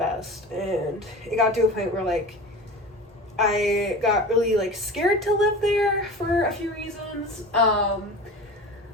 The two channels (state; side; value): normal; both; correlation 0.34